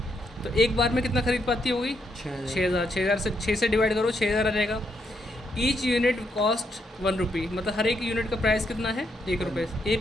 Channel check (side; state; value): both; normal; correlation 0.78